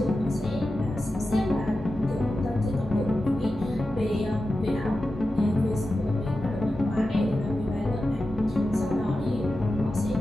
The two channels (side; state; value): both; normal; correlation 0.92